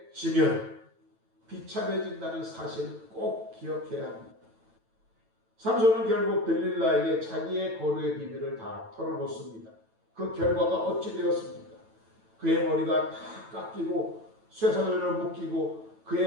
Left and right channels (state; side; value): late; left; 9.0 ms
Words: 지면 비참해진다는 사실을 꼭 기억해야 합니다. 삼손은 결국 들릴라에게 자기의 거루의 비밀을 다 털어놓습니다. 그 결과가 어찌 되었습니까? 그의 머리가 다 깎이고 쇠사슬을 묶이고